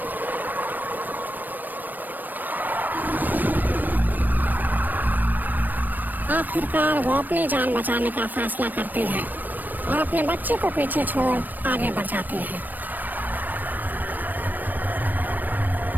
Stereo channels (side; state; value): left; late; 0.089 ms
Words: आखिरकार वो अपनी जान बचाने का फैसला करती है और अपने बच्चे को पीछे छोड़ आगे बढ़ जाती है।